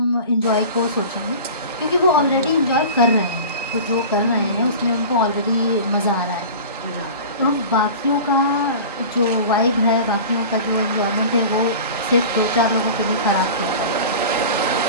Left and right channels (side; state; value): both; inverted; correlation -0.36